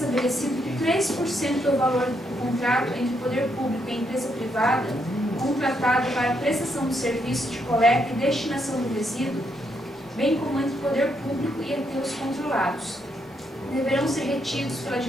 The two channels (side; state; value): both; normal; correlation 0.77